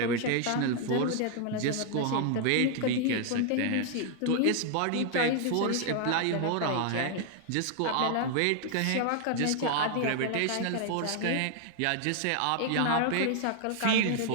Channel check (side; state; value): both; different; correlation 0.00